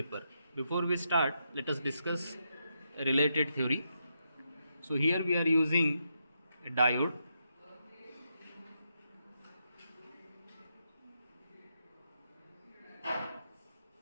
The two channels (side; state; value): both; inverted; correlation -0.82